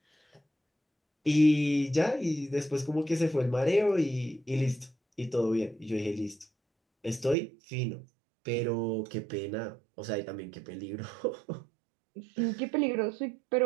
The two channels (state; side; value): drops out; left; at 7.4 s